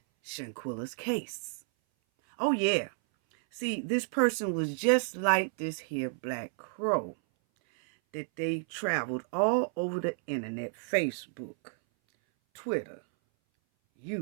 Shanquilla's case. Oh yeah. See, this person was just like this here black crow that they traveled all over the internet, Facebook, Twitter,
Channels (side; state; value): left; silent; 57 dB below the other